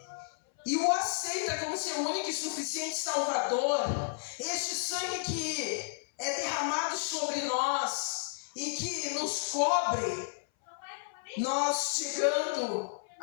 e o aceita como seu único e suficiente Salvador. Este sangue que é derramado sobre nós e que nos cobre, nós chegando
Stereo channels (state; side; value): silent; right; 56 dB below the other